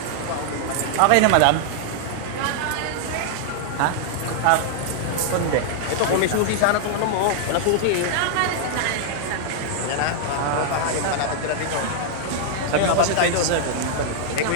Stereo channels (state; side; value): different; both; correlation -0.01